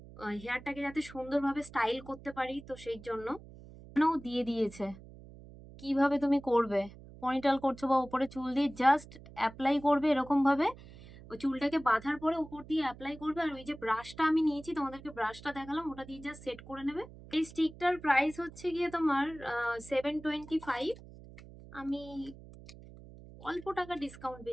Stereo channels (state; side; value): noise; right; hum, 18 dB below the sound